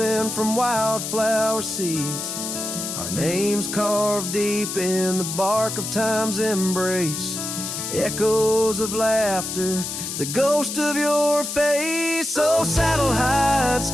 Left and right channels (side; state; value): left; noise; hiss, 5 dB below the sound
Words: from wildflower seeds. Our names carved deep in the bark of time's embrace, echoes of laughter, the ghost of your face. Oh, saddle hides